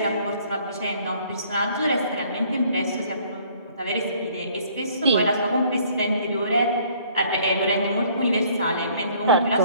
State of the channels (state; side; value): inverted; both; correlation -0.59